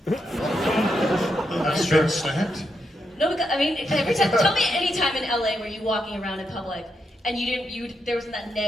That's straight snapped. No, because I mean, every time. Tell me any time in LA where you're walking around in public and there wasn't that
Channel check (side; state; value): both; normal; correlation 0.82